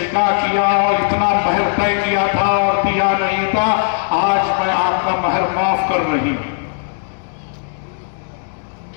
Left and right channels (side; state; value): right; silent; digital silence